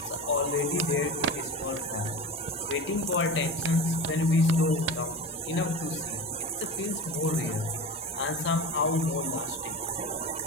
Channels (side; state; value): both; normal; correlation 0.29